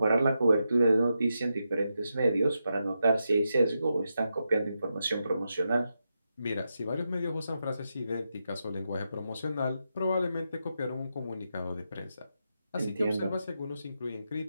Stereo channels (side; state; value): both; inverted; correlation -0.86